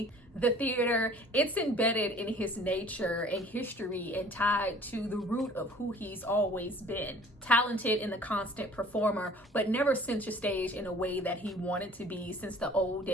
The theater, it's embedded in his nature and history and tied to the root of who he's always been. Talented and the constant performer, but never center stage in a way that he wanted to be since the old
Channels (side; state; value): both; normal; correlation 0.50